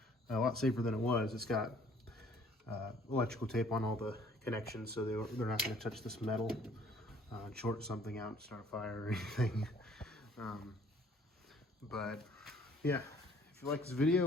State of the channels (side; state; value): both; normal; correlation 0.58